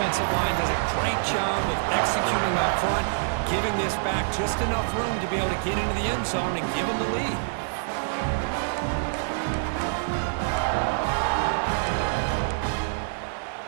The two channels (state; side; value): silent; left; digital silence